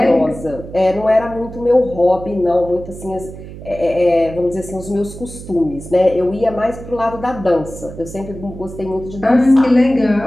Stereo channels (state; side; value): noise; right; hum, 13 dB below the sound